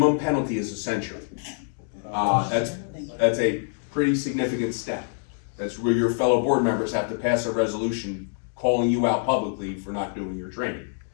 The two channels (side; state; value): right; silent; digital silence